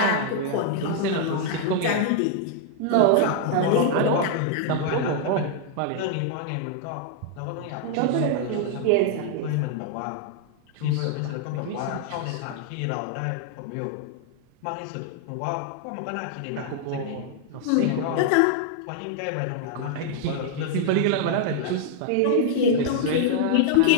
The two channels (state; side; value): different; both; correlation -0.01